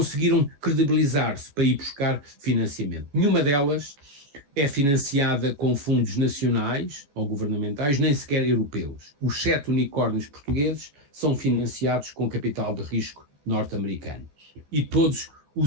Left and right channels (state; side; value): late; left; 14 ms